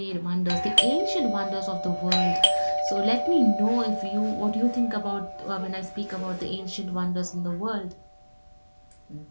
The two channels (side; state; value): both; inverted; correlation -1.00